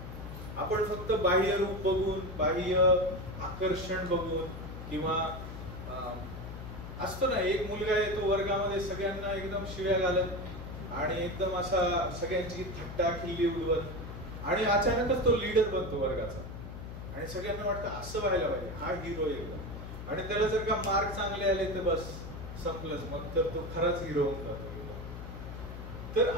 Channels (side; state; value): left; noise; hum, 10 dB below the sound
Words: आपण फक्त बाह्य रूप बघून, बाह्य आकर्षण बघून, किंवा असतो ना एक मुलगा येतो वर्गामध्ये सगळ्यांना एकदम शिव्या घालत आणि एकदम असा सगळ्यांची थट्टा खिल्ली उडवत, आणि अचानकच तो लीडर बनतो वर्गाचा आणि सगळ्यांना वाटतं असं व्हायला पाहिजे, हा हिरो एकदम. आणि त्याला जर का मार्क चांगले आले तर बस संपलंच, मग तर तो खराच हिरो होऊन जातो. तर